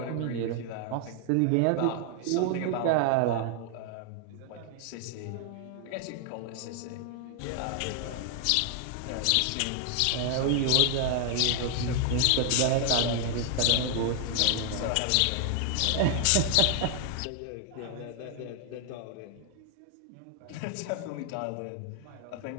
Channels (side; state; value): both; different; correlation 0.00